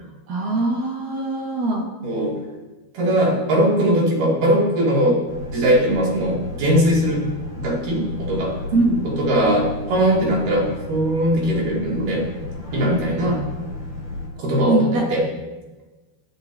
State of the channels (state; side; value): late; left; 13 ms